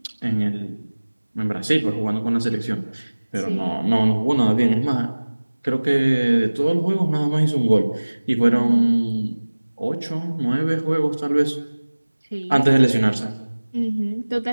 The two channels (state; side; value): inverted; both; correlation -1.00